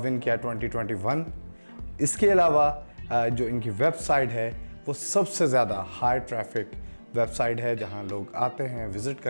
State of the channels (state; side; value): inverted; both; correlation -1.00